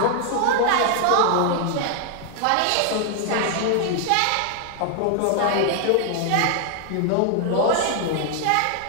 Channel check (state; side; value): different; both; correlation 0.00